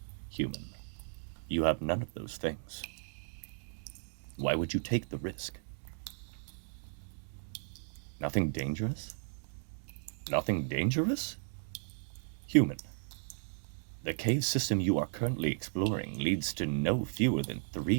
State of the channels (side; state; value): left; silent; digital silence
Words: human, you have none of those things. Why would you take the risk? Nothing dangerous? Nothing dangerous? Human, the cave system you are currently exploring leads to no fewer than